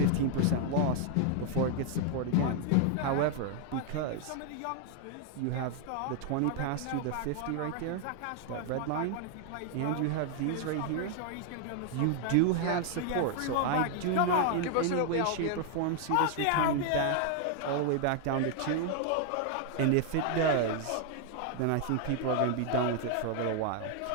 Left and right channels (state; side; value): different; both; correlation 0.00